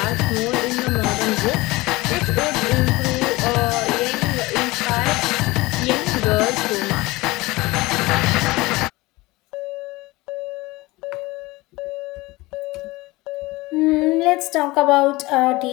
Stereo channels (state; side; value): quieter; right; 21.2 dB